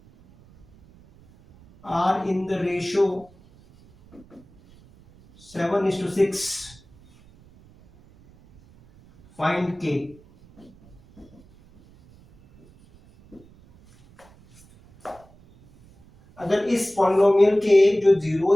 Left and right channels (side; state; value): right; noise; rumble, 27 dB below the sound